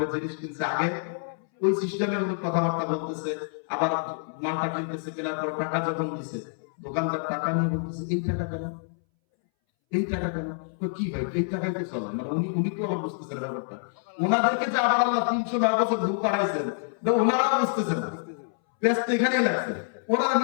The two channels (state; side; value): silent; right; 60 dB below the other